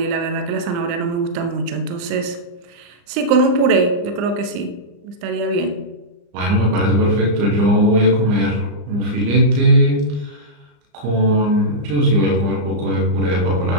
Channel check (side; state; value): left; late; 35 ms